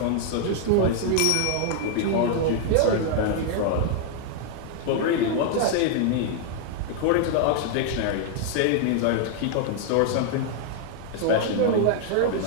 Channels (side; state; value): both; different; correlation 0.00